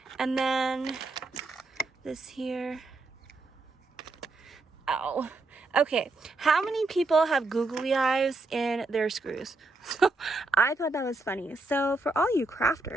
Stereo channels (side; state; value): left; quieter; 3.2 dB